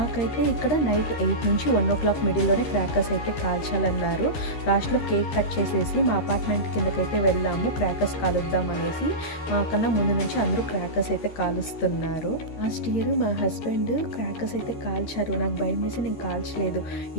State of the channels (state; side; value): late; right; 13 ms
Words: ఇక్కడ నైట్ 8 నుంచి 1 o'clock మిడిల్లోనే క్రాకర్స్ అయితే కాల్చాలన్నారు. లాస్ట్లో కేక్ కట్ చేసేసి మా అపార్ట్మెంట్ కిందకైతే వెళ్ళాము క్రాకర్స్ కాలుద్దాం అనేసి. మాకన్నా ముందు నుంచి అందరూ క్రాకర్స్ అయితే కాలుస్తున్నారు. లాస్ట్ ఇయర్ మా హస్బెండ్ క్రాకర్స్ అయితే కాల్చారు. నాకు భయం వేసి నేను కాల్చలేదు.